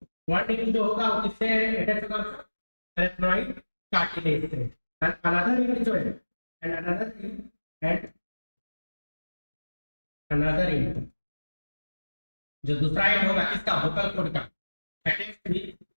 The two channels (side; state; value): both; inverted; correlation -1.00